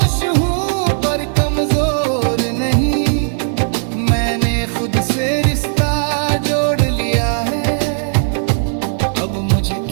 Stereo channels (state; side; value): silent; left; digital silence